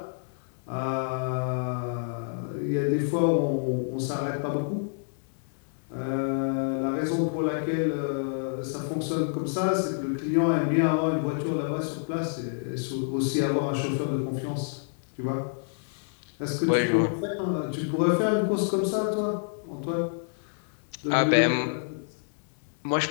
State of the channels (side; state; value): right; silent; 59 dB below the other